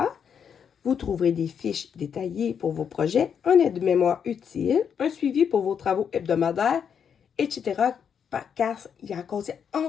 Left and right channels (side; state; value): right; quieter; 7.5 dB